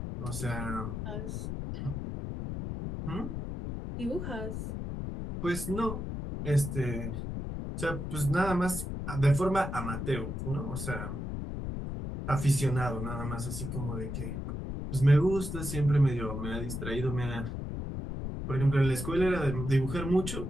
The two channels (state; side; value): noise; left; rumble, 5 dB below the sound